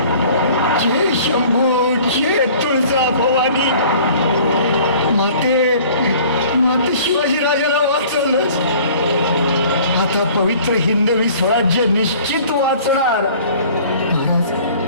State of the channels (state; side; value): inverted; both; correlation -0.50